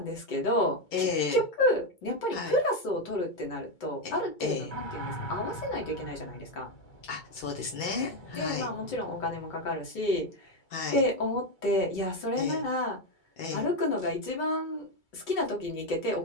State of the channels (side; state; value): right; late; 2.3 ms